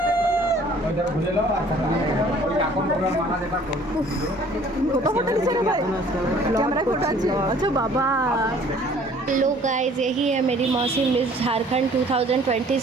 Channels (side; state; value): both; normal; correlation 0.54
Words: फोटो खींचेगा भाई कैमरा फोटो अच्छा बाबा हेलो गाइस, यही है मेरी मौसी मिस झारखंड